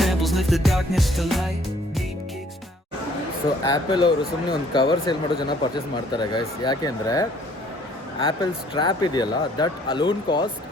lift the darkness to light. Deep kicks. So apple ಅವರು ಸುಮ್ಮನೆ ಒಂದು cover sale ಮಾಡೋ ಜನ purchase ಮಾಡ್ತಾರೆ guys. ಯಾಕೆ ಅಂದರೆ Apple strap ಇದೆಯಲ್ಲ, that alone cost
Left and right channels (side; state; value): both; normal; correlation 0.59